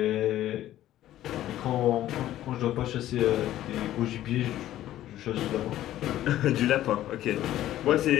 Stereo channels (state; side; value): quieter; right; 13.4 dB